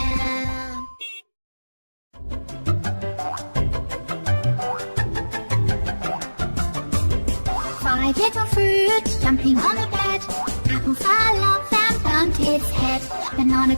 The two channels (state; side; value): inverted; both; correlation -1.00